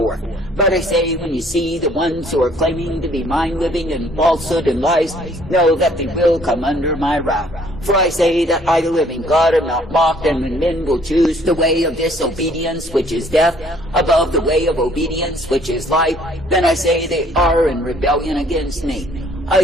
But I say, when you see the ones who are claiming to be mine living in falsehood and lies, know that they will come under my wrath. For I say that I, the living God, am not mocked, and when men will choose the way of disobedience, which is death, above the way of obedience, which is life, then I say they are in rebellion against me. I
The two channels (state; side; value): normal; both; correlation 0.60